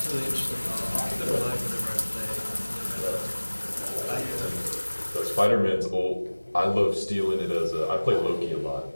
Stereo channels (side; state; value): both; inverted; correlation -1.00